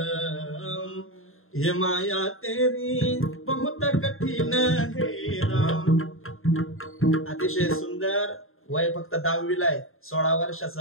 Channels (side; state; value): right; late; 0.61 ms